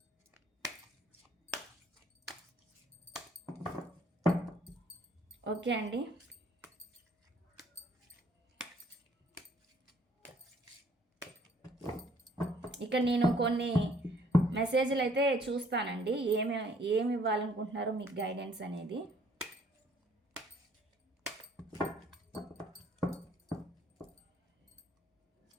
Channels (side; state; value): both; normal; correlation 0.61